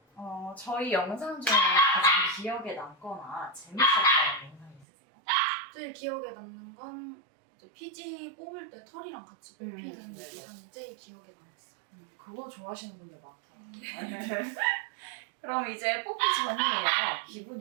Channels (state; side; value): drops out; left; at 4.9 s